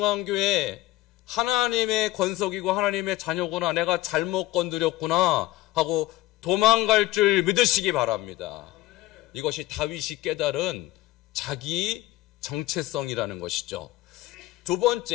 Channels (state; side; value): quieter; right; 16.7 dB